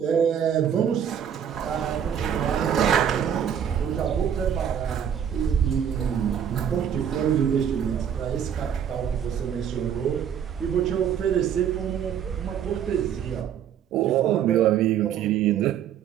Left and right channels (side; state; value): left; quieter; 8.8 dB